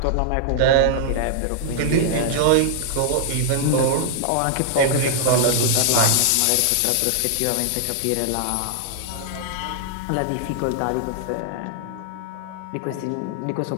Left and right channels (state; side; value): different; both; correlation -0.01